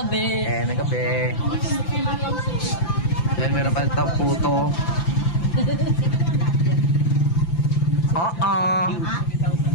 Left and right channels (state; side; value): late; right; 5.9 ms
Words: Then meron pa ito puto. Oo.